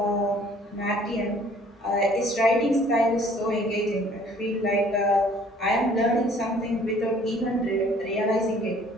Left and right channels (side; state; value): both; normal; correlation 0.56